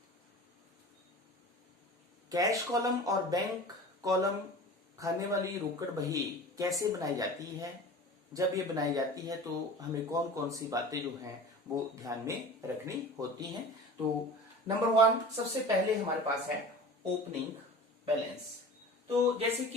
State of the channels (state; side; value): normal; both; correlation 0.37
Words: कैश कॉलम और बैंक कॉलम खाने वाली रोकड़ बही कैसे बनाई जाती है, जब ये बनाई जाती है तो हमें कौन कौन सी बातें जो हैं वो ध्यान में रखनी होती हैं। तो नंबर 1 सबसे पहले हमारे पास है ओपनिंग बैलेंस। तो जैसे